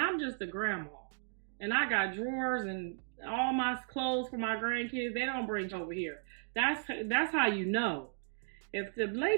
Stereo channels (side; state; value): left; silent; digital silence